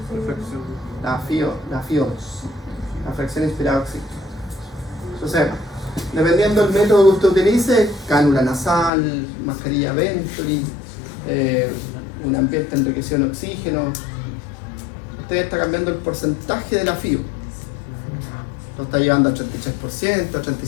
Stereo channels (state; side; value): drops out; right; at 8.9 s